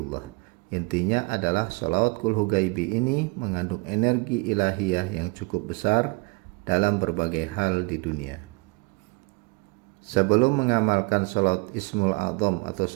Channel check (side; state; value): left; quieter; 30.5 dB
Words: Intinya adalah sholawat kulhu gaibi ini mengandung energi ilahiyah yang cukup besar dalam berbagai hal di dunia. Sebelum mengamalkan sholawat Ismul A'zam atau